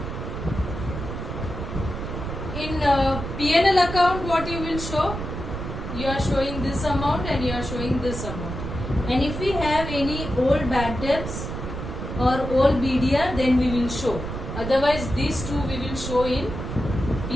In P&L account, what you will show? You are showing this amount and you are showing this amount. And if we have any old bad debts or old BDR, then we will show. Otherwise, these two we will show in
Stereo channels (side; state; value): right; noise; rumble, 6 dB below the sound